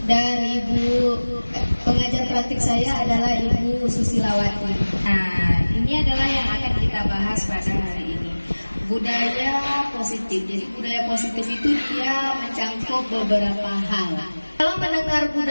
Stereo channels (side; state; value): both; inverted; correlation -1.00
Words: dan Ibu pengajar praktik saya adalah Ibu Susilawati. Nah, ini adalah yang akan kita bahas pada hari ini, budaya positif. Jadi budaya positif itu dia mencangkup beberapa hal. Kalau mendengar